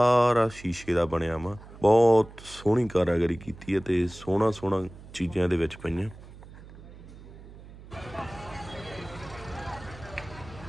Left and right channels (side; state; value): right; noise; hum, 18 dB below the sound